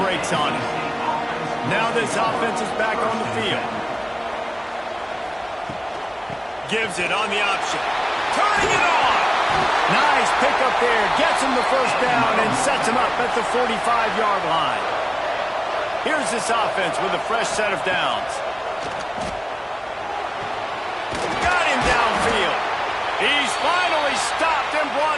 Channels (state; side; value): identical; both; correlation 1.00